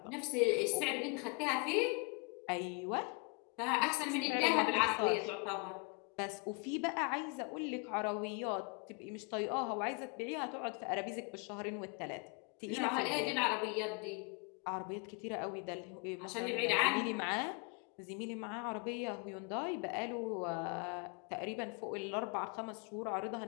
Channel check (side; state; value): right; quieter; 33.2 dB